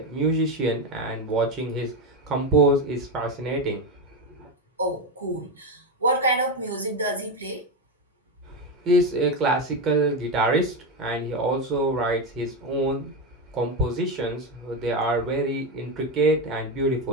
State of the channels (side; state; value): both; normal; correlation 0.12